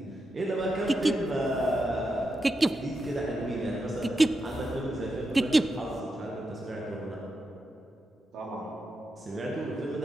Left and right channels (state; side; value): normal; both; correlation 0.87